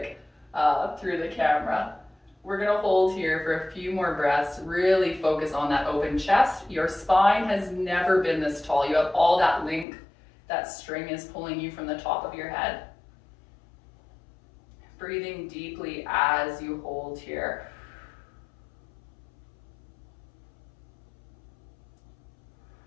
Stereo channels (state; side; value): drops out; right; at 9.9 s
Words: through the camera. We're gonna hold here for a few more breaths, really focus on that open chest. Your spine has never been this tall. You have all that length, that string is pulling you from the top of your head. Breathing deeply as you hold here.